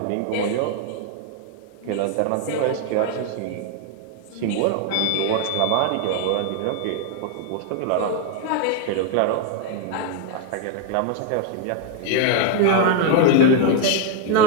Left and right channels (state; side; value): different; both; correlation 0.00